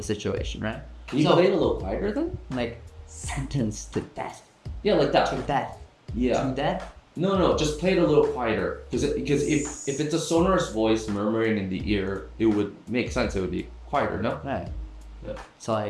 situation, right? Can you So- play it a little quieter then? Like sentenced to death. Yeah, like that. To death. Yeah. To death. No, just play it a little quieter. Because if it's a sonorous voice murmuring in the ear, it would make sense. It would be quieter, no? Right. Yeah. So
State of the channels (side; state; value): both; identical; correlation 1.00